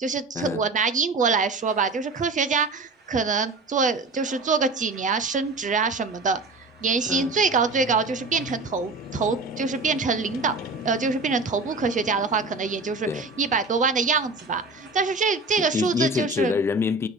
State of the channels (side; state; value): left; quieter; 3.2 dB